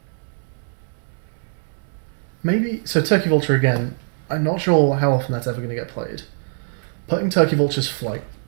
Maybe, so Turkey Vulture again, I'm not sure how often that's ever going to get played. Putting Turkey Vulture's flight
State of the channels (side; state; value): left; silent; 64 dB below the other